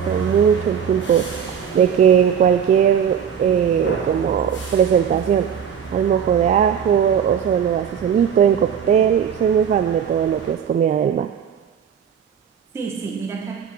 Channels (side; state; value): left; quieter; 8.1 dB